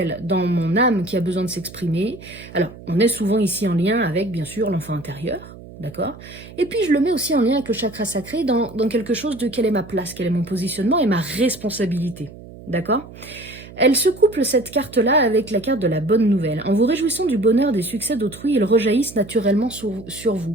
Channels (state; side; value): noise; right; hum, 17 dB below the sound